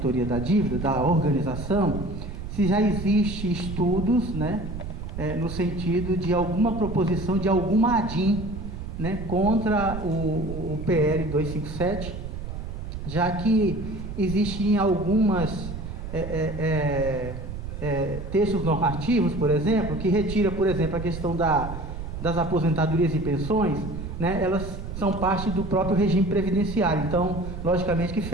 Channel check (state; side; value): noise; right; rumble, 8 dB below the sound